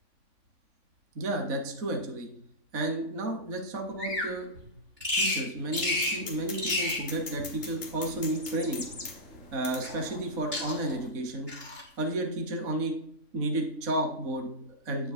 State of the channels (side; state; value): left; late; 3.5 ms